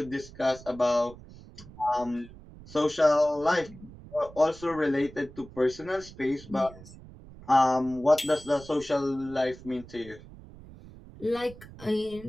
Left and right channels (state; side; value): noise; right; rumble, 18 dB below the sound